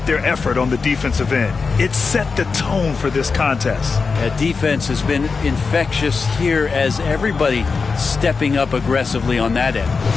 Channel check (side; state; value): right; quieter; 4.8 dB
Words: their effort on the defensive end. It set the tone for this contest. That defense has been infectious here as everybody stepping up aggressively on that end.